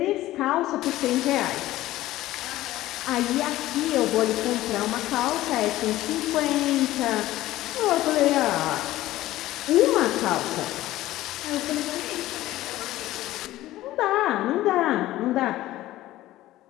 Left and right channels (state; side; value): quieter; right; 15.7 dB